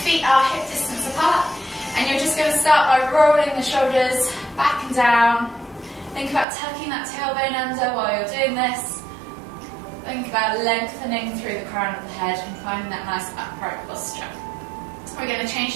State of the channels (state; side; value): drops out; left; at 6.5 s